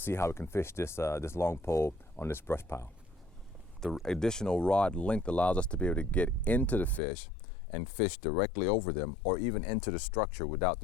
how we can fish this long pole on this brush pile. The additional rod length allows us to be able to get into the fish and fish directly over them, or even into the structure without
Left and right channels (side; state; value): right; drops out; at 7.0 s